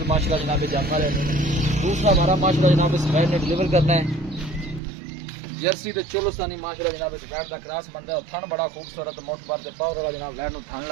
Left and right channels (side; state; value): left; drops out; at 4.8 s